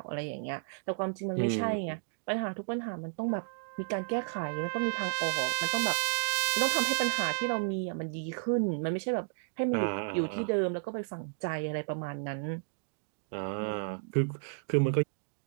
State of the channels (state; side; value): silent; left; digital silence